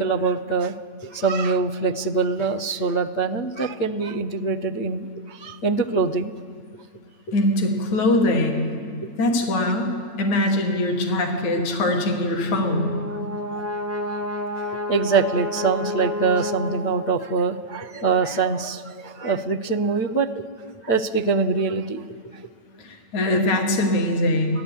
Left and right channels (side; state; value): right; late; 8.9 ms